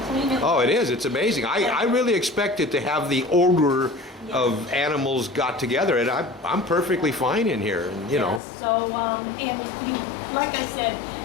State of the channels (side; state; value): right; drops out; at 8.4 s